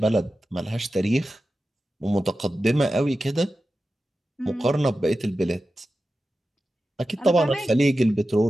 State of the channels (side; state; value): both; normal; correlation 0.93